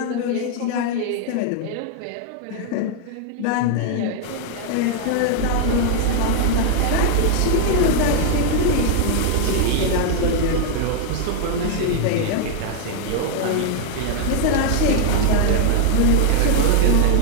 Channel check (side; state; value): both; different; correlation 0.00